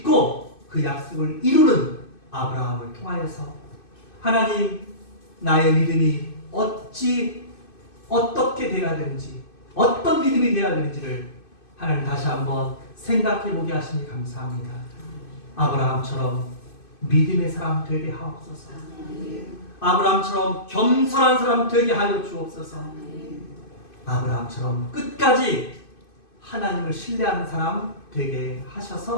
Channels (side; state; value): right; late; 2.5 ms